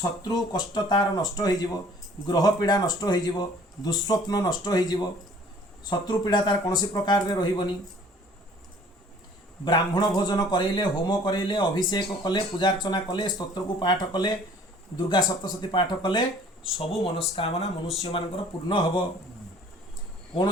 कष्ट तार नष्ट हो ग्रह पीड़ा नष्ट हो दुस्वप्न नष्ट हो शत्रु पीड़ा तार कौन प्रकार रे रहिबनी ब्राह्मण भोजन करैले होम करैले अभिषेक कले पूजार्चना कले स्तोत्र को पाठ कले दुर्गा सप्तशती पाठ कले सबु मनस्कामना मनुष्य मानकर पूर्ण हब कौन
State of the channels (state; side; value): normal; both; correlation 0.53